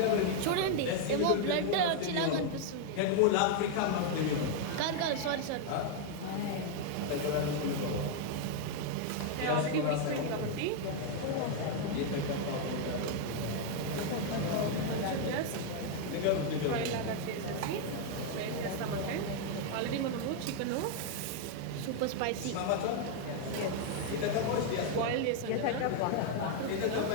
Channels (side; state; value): both; different; correlation 0.00